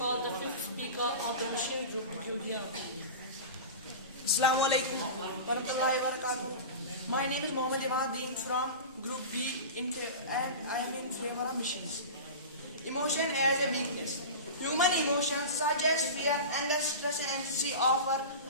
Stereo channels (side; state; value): both; inverted; correlation -0.30